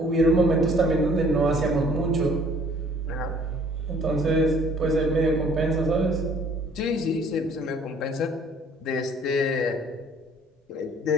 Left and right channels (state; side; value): normal; both; correlation 0.56